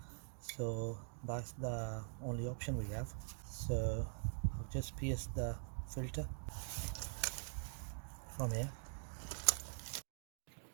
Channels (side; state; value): left; silent; digital silence